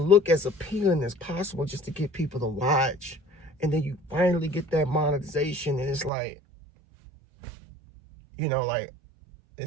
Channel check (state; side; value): drops out; left; at 6.1 s